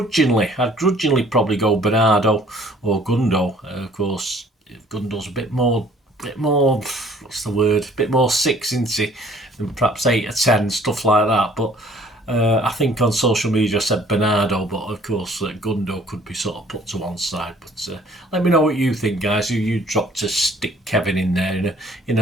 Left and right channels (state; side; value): normal; both; correlation 0.57